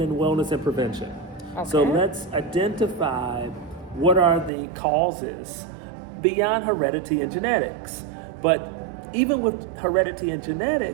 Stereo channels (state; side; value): drops out; left; at 4.5 s